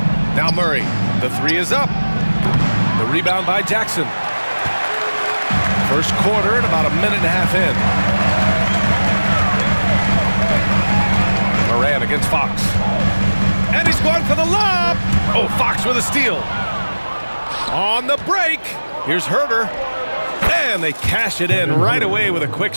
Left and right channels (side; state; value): both; inverted; correlation -1.00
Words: Now Murray. The three is up. The rebound by Jackson. First quarter and about a minute and a half in. Moran against Fox. And he's going for the lob. Oh, Fox with a steal. On the break. Here's Herder. And they cash it in right away with a quick